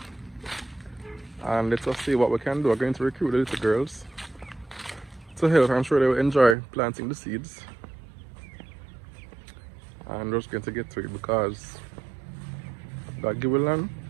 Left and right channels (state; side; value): drops out; left; at 6.6 s